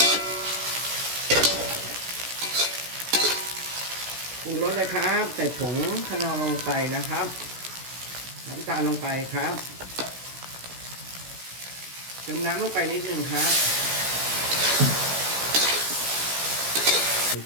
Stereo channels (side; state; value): left; late; 16 ms